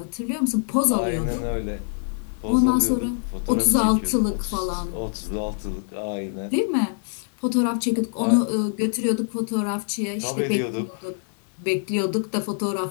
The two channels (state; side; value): silent; right; 62 dB below the other